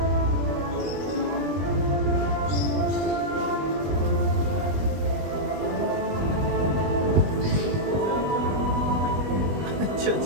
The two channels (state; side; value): late; left; 20 ms